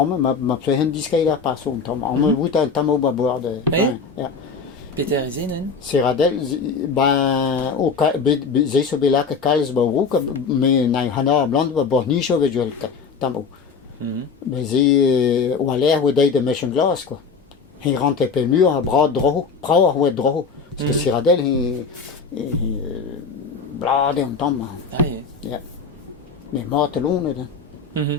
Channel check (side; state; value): right; quieter; 5.2 dB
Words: fait un disque là par son tom. On vous tam au bord de. Ja. Peter is nen? Serradel, ben, au zé so bela que Carlos Barouk, mais n'a hana blanc ba bornicho avec duel tambo. Mais zé ou l'air ou de machine glace quoi. Il rentre peu mur à bras droit, bras ou droit. Parce que Serradel il blade on tombe. Ah, ye. Ja. Mais mort long là.